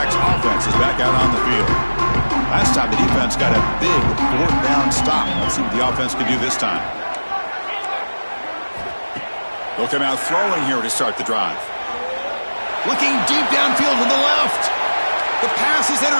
offense is back out on the field. Last time the defense got a big 4th down stop. Let's see what the offense can do this time. They'll come out throwing here to start the drive. Looking deep downfield to the left. The pass is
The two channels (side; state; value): both; inverted; correlation -1.00